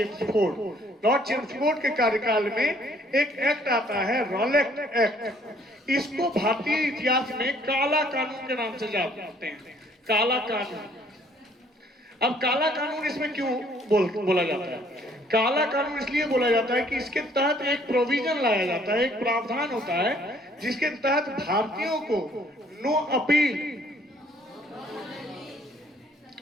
लॉर्ड चेम्सफोर्ड के कार्यकाल में एक एक्ट आता है, रॉलेट एक्ट। इसको भारतीय इतिहास में काला कानून के नाम से जानते हैं, काला कानून। अब काला कानून इसमें क्यों बोला जाता है? काला कानून इसलिए बोला जाता है कि इसके तहत एक प्रोविजन लाया जाता है, एक प्रावधान होता है जिसके तहत भारतीयों को नो अपील,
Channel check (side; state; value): both; normal; correlation 0.61